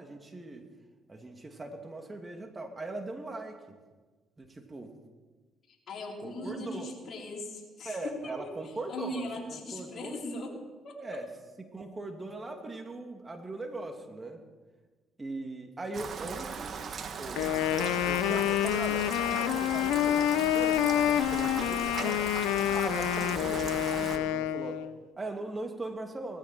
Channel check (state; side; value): quieter; right; 6.2 dB